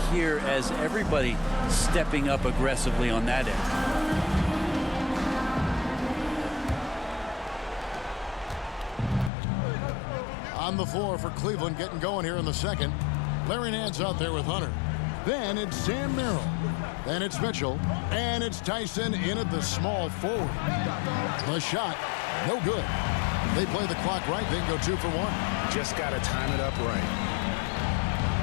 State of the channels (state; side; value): drops out; right; at 9.3 s